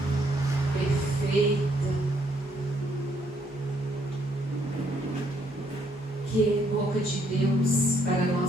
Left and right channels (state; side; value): normal; both; correlation 0.70